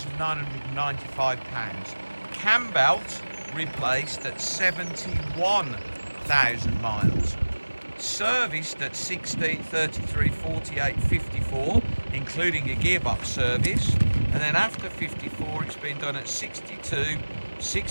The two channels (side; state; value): both; inverted; correlation -1.00